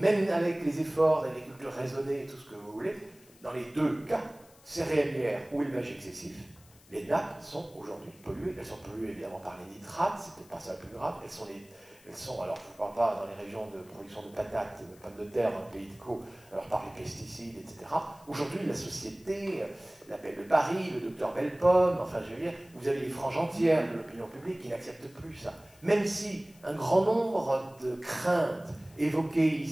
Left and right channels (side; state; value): left; noise; hiss, 26 dB below the sound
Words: avec les efforts d'agriculture raisonnée et tout ce que vous voulez, dans les deux cas, céréalière ou élevage excessif, les nappes sont aujourd'hui polluées. Elles sont polluées évidemment par les nitrates, c'est peut-être pas ça le plus grave, elles sont, alors je ne parle pas dans les régions de production de patates, de pommes de terre, dans le pays de Caux, alors par les pesticides, etc. Aujourd'hui, la société, le Paris, le docteur Bellepomme, enfin je veux dire, vous avez les franges entières de l'opinion publique qui n'acceptent plus ça. Même si un grand nombre de craintes évoquées